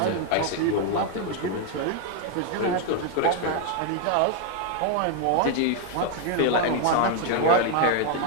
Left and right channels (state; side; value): different; both; correlation 0.01